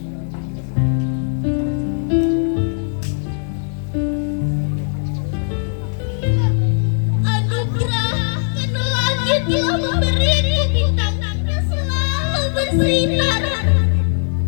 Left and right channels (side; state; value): right; silent; digital silence